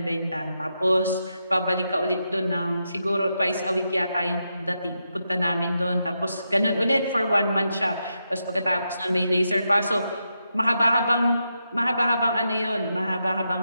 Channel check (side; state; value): both; inverted; correlation -0.84